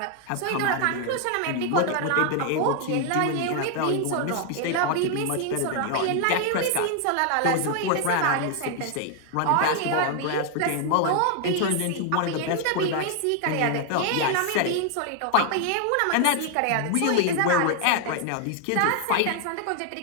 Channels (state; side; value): different; both; correlation 0.00